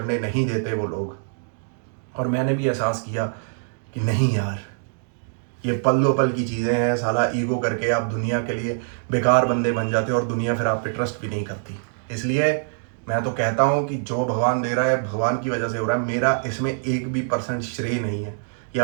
नहीं देते वो लोग। और मैंने भी एहसास किया कि नहीं यार, ये पल दो पल की चीज़ें हैं। साला ईगो करके आप दुनिया के लिए बेकार बंदे बन जाते हो और दुनिया फिर आप पे ट्रस्ट भी नहीं करती। इसलिए मैं तो कहता हूँ कि जो भगवान दे रहा है भगवान की वजह से हो रहा है। मेरा इसमें 1% श्रेय नहीं है,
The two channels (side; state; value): left; silent; digital silence